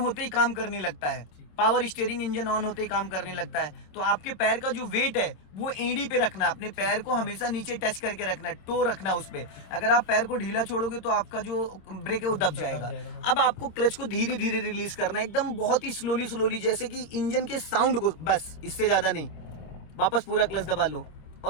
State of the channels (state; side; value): late; right; 26 ms